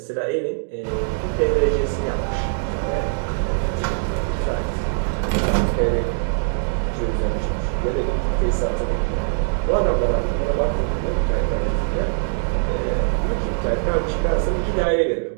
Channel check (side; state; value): left; silent; digital silence